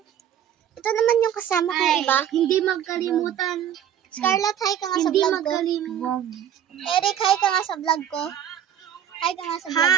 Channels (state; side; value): quieter; left; 9.9 dB